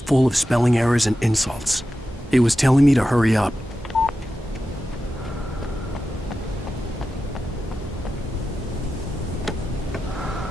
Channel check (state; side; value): normal; both; correlation 0.92